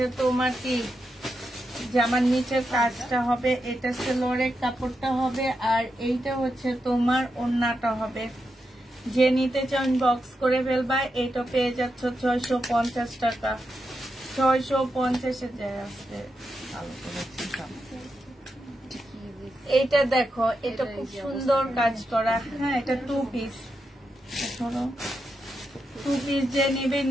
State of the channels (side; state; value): both; normal; correlation 0.86